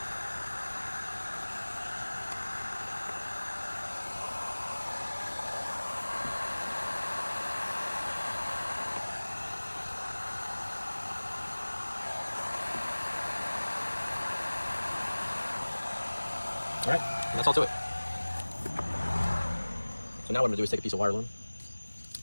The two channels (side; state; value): both; inverted; correlation -1.00